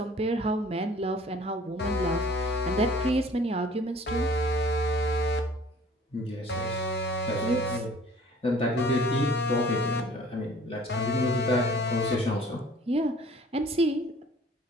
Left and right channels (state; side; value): normal; both; correlation 0.52